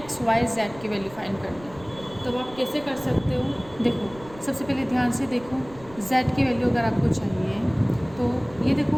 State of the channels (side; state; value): right; noise; rumble, 20 dB below the sound